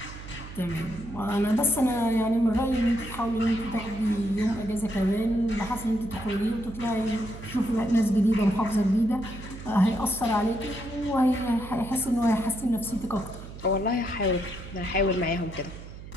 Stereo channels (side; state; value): right; noise; hum, 13 dB below the sound